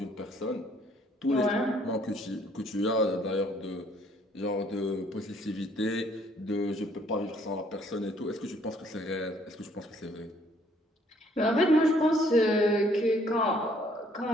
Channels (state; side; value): normal; both; correlation 0.63